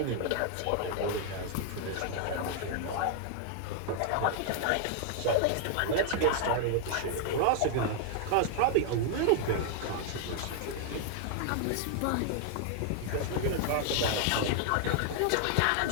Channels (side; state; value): both; different; correlation 0.00